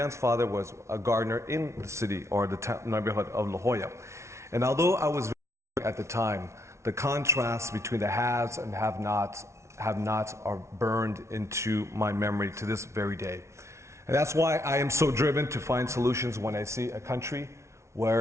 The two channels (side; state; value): left; late; 0.13 ms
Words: father was a gardener in the city or the neighborhood of La Jolla. And although I was very young at the time, the contrast between the haves and have-nots are burned into my memory to this very day. And that's why I am so driven to find solutions when I see a country